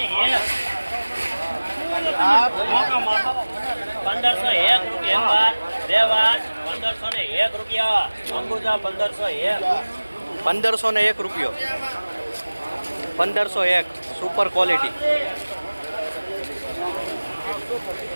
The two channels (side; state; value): both; inverted; correlation -1.00